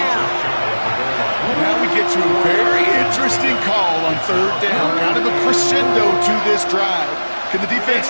Now we get to a very interesting call on 3rd down. Kind of a crescendo to this drive. Can the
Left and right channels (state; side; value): inverted; both; correlation -1.00